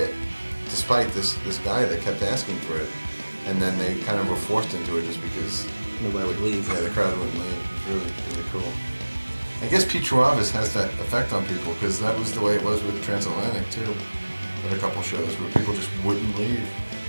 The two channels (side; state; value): both; inverted; correlation -1.00